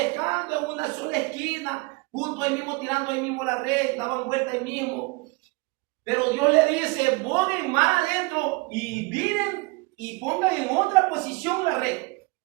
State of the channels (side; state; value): left; quieter; 26.6 dB